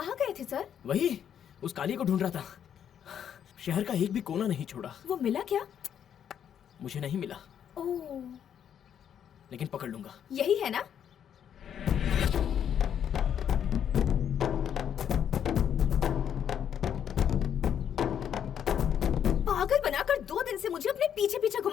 गए थे सर? वही, उस काली को ढूंढ रहा था। शहर का एक भी कोना नहीं छोड़ा। वो मिला क्या? मुझे नहीं मिला, ओह, लेकिन पकड़ लूंगा। यही है ना? पागल बनाकर 2 दिन से मुझे अपने पीछे पीछे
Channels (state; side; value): quieter; right; 9.0 dB